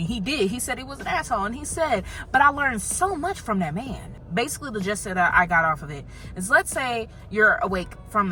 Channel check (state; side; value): identical; both; correlation 1.00